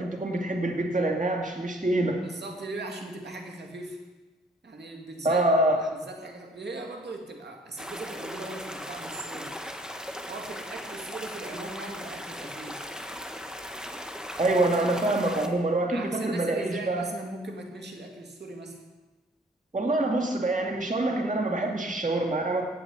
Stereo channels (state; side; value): normal; both; correlation 0.59